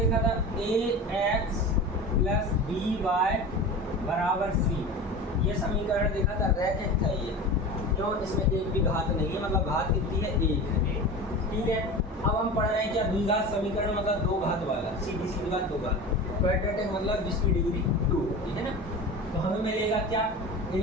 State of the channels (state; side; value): normal; both; correlation 0.32